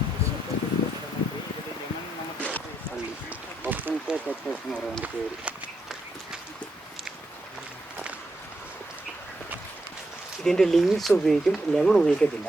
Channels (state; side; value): normal; both; correlation 0.81